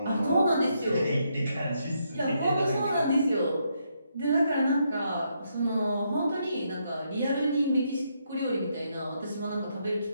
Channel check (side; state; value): both; inverted; correlation -0.77